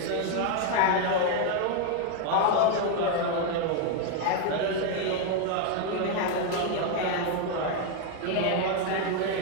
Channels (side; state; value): both; different; correlation 0.01